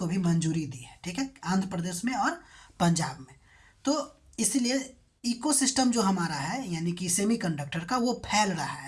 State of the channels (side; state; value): both; identical; correlation 1.00